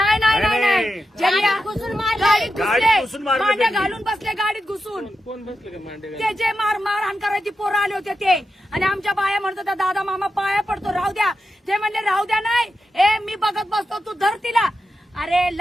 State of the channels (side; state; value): both; normal; correlation 0.88